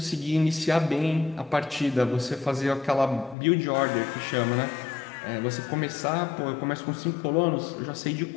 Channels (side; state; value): right; drops out; at 3.4 s